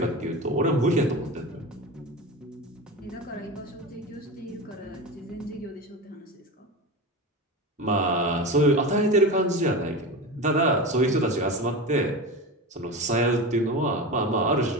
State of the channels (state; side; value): normal; both; correlation 0.26